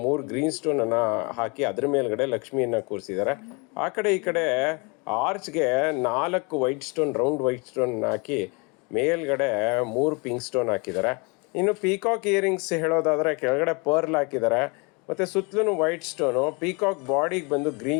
3 ಗ್ರೀನ್ ಸ್ಟೋನನ್ನು ಹಾಕಿ ಅದ್ರ ಮೇಲ್ಗಡೆ ಲಕ್ಷ್ಮಿಯನ್ನು ಕೂರಿಸಿದ್ದಾರೆ. ಆ ಕಡೆ ಈ ಕಡೆ ಆರ್ಚ್ಗೆ 4 white stone, round white stone ಹಾಕಿ ಮೇಲ್ಗಡೆ 3 ಪಿಂಕ್ ಸ್ಟೋನ್ ಹಾಕಿದ್ದಾರೆ. ಇನ್ನು ಪೀಕಾಕ್ ಇಯರಿಂಗ್ಸ್ ಹೇಳೋದಾದರೆ ಕೆಳಗಡೆ ಪರ್ಲ್ ಹಾಕಿದ್ದಾರೆ ಮತ್ತು ಸುತ್ತಲೂ ವೈಟ್ ಸ್ಟೋನು. ಪೀಕಾಕ್ ಬಾಡಿಗೆ ಬಂದು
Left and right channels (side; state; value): right; quieter; 30.6 dB